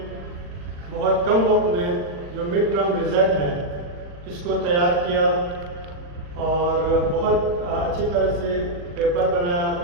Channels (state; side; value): late; left; 40 ms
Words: بہت کم وقت میں جو مڈ ٹرم رزلٹ ہے اس کو تیار کیا اور بہت اچھی طرح سے پیپر بنایا